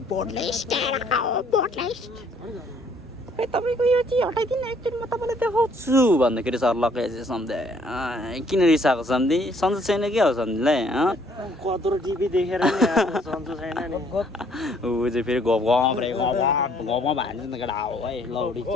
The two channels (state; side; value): normal; both; correlation 0.63